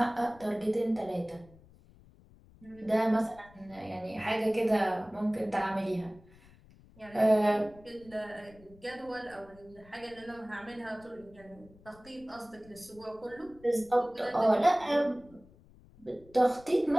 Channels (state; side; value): noise; left; rumble, 25 dB below the sound